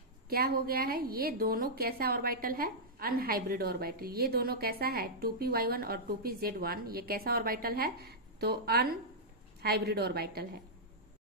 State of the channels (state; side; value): normal; both; correlation -0.10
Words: क्या हो गया है, ये दोनों कैसा ऑर्बिटल है, अनहाइब्रिड ऑर्बिटल। ये दोनों कैसा है, 2py1 और 2pz1, ये कैसा ऑर्बिटल है, तो अनहाइब्रिड ऑर्बिटल है।